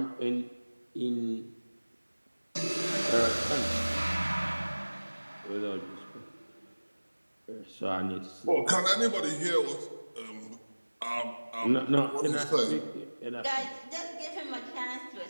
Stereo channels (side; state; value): both; inverted; correlation -1.00